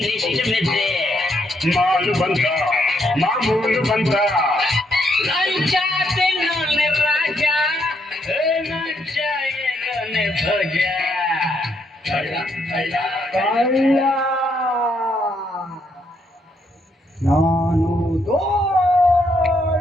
ಮೆದ್ದೆ ಮಾಲು ಬಂತ ಮಾಮೂಲು ಬಂತ ಲಂಚ ತಿನ್ನೋನೆ ರಾಜ ಲಂಚ ಏನೋನೆ ಭೋಜ ಕಳ್ಳ ಕಳ್ಳ ಕಳ್ಳ ನಾನು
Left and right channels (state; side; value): normal; both; correlation 0.75